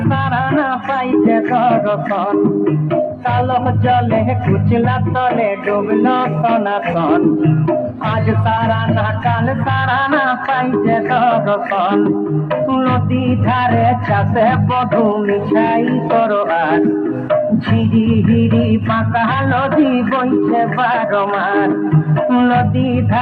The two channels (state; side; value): identical; both; correlation 1.00